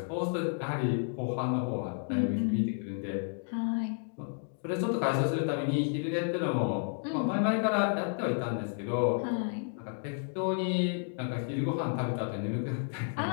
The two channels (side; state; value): right; silent; 57 dB below the other